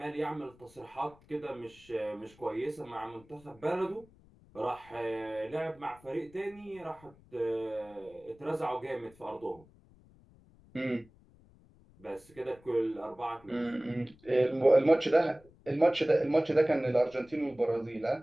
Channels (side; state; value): left; noise; rumble, 27 dB below the sound